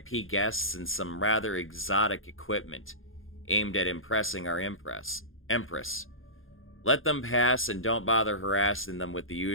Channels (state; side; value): late; right; 0.59 ms